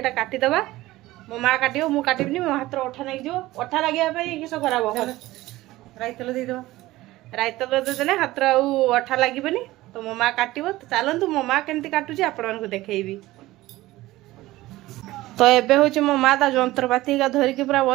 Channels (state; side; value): quieter; left; 17.6 dB